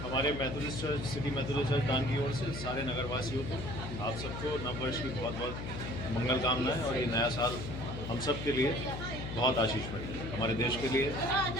हमारे Methodist church, city Methodist church दान की ओर से सारे नगरवासियों को, आप सबको नववर्ष की बहुत बहुत मंगल कामनाएं, और ये नया साल हम सब के लिए बहुत आशीषमय है, हमारे देश के लिए,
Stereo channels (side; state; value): left; noise; hum, 6 dB below the sound